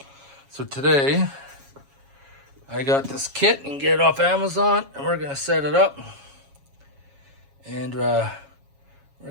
So today, I got this kit and get it off Amazon. And we're going to set it up. And we're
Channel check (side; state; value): left; late; 7.2 ms